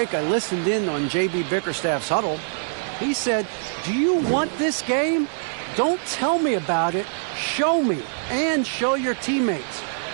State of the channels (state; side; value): silent; left; digital silence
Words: I listened in on J.B. Bickerstaff's huddle. He said, "Do you want this game? Don't tell me about it. Show me and show your teammates.